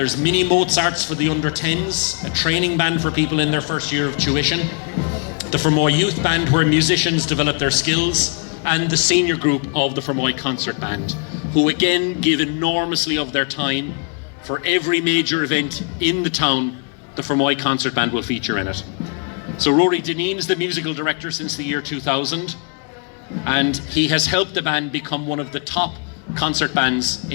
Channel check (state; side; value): quieter; right; 37.8 dB